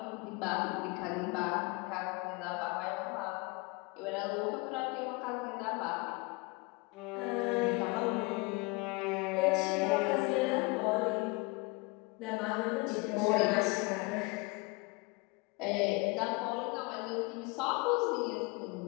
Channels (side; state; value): right; quieter; 27.2 dB